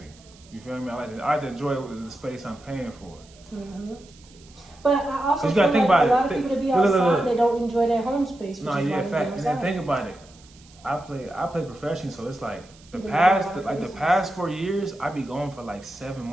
You feel me? I like to enjoy the space I'm paying for. Mm-hmm. But I also you feel gotta think like about a lot it. of people that be Look, look, outside, look. they don't enjoy their home space. Which No, is yeah, why they fact. go And then outside. think about it. I play professional, so it's like the Yeah, past 4 years, I be going for like 7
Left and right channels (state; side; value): noise; right; hiss, 26 dB below the sound